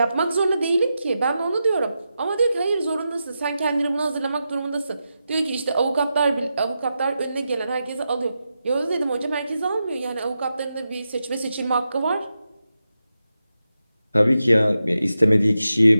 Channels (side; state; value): both; inverted; correlation -0.89